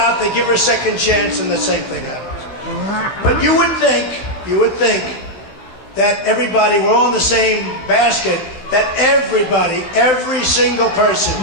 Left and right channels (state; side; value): late; right; 15 ms